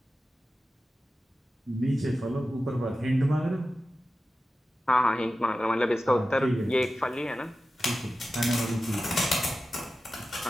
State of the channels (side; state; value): both; normal; correlation 0.93